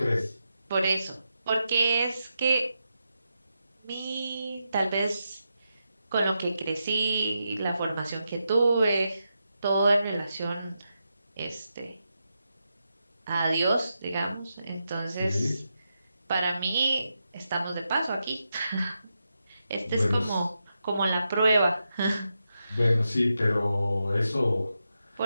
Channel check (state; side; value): inverted; both; correlation -0.87